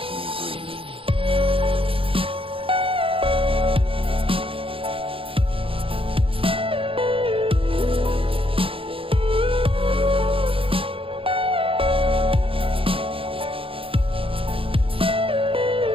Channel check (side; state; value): left; late; 0.26 ms